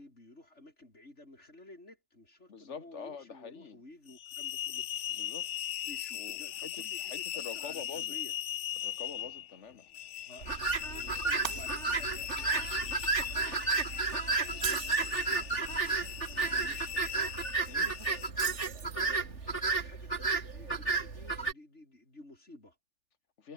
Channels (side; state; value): right; late; 3.4 ms